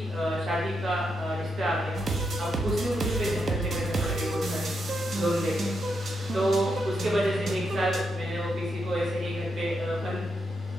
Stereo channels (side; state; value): both; normal; correlation 0.82